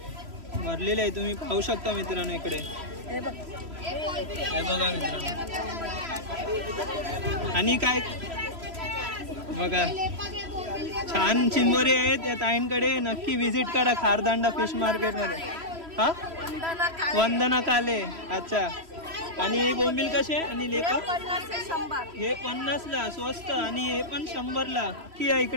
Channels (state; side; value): late; left; 3.0 ms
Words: भरलेले आहे. तुम्ही पाहू शकता मित्रांनो इकडे. हे बघा मित्रांनो. आणि काय बघा छान चिंबोरी आहेत या ताईंकडे. नक्की विजिट करा खारदांडा फिश मार्केट मध्ये. हा वंदना काले. अच्छा. आणि बोंबील कसे आणि लेपा? हे 50 ला स्वस्त आणि हे पण 100 ला. की आहे